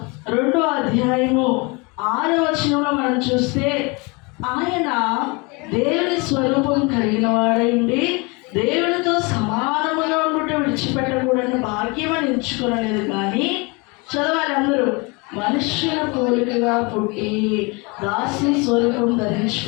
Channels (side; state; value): right; quieter; 28.4 dB